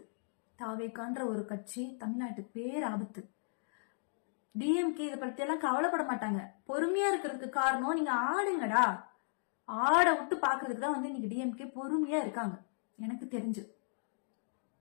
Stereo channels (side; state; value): right; silent; digital silence